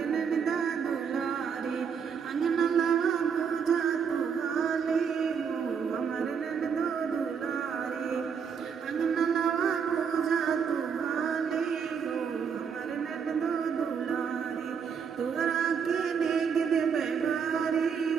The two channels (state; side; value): quieter; left; 6.7 dB